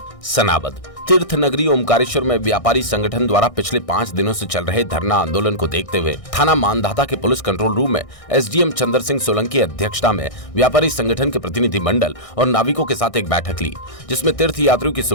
सनाबद तीर्थ नगरी ओमकारेश्वर में व्यापारी संगठन द्वारा पिछले 5 दिनों से चल रहे धरना आंदोलन को देखते हुए थाना मानधाता के पुलिस कंट्रोल रूम में एसडीएम चंद्र सिंह सोलंकी की अध्यक्षता में व्यापारी संगठन के प्रतिनिधि मंडल और नाविकों के साथ एक बैठक ली, जिसमें तीर्थ यात्रियों की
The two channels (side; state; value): right; late; 1.6 ms